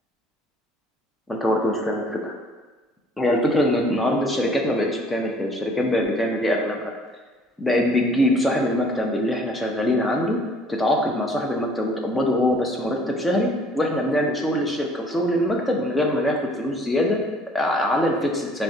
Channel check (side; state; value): both; normal; correlation 0.56